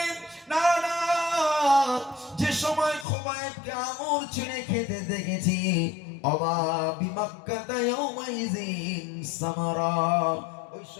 না না, যে সময় খুবাইবকে আঙুর ছিঁড়ে খেতে দেখেছি, অবা বিমাক্কাতা ইয়াউমাইযিন সামারা, ওই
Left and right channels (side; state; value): right; drops out; at 3.1 s